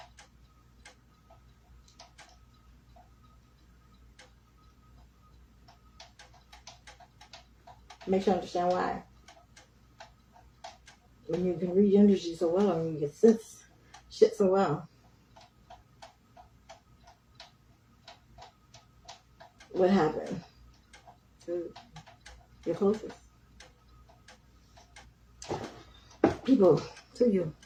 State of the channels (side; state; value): both; identical; correlation 1.00